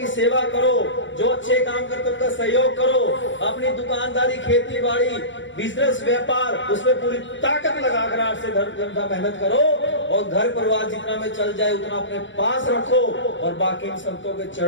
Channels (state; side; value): late; right; 0.55 ms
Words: सेवा करो, जो अच्छे काम करते उनका सहयोग करो, अपनी दुकानदारी, खेती बाड़ी, बिजनेस, व्यापार, उसमें पूरी ताकत लगाकर 8 से 10 घंटा मेहनत करो और घर परिवार जितना में चल जाए उतना अपने पास रखो और बाकी इन संतों के